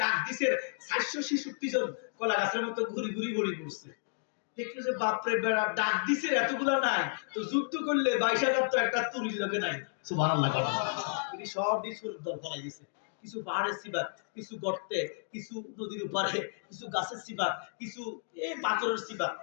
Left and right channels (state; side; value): silent; right; digital silence